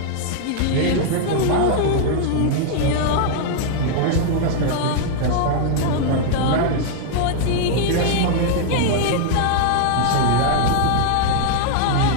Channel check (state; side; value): different; both; correlation 0.00